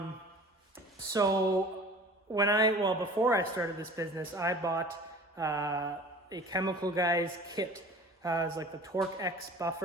So before I started this business, I bought a Chemical Guys kit. It's like the Torque X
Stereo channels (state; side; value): normal; both; correlation 0.43